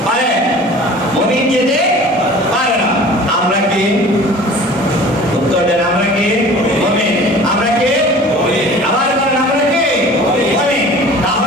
পারে, মুমিন যেতে পারে না। আমরা কি উত্তর দেন? আমরা কি মুমিন? আমরা কি মুমিন? আবার বলেন আমরা কি মুমিন?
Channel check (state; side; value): normal; both; correlation 0.44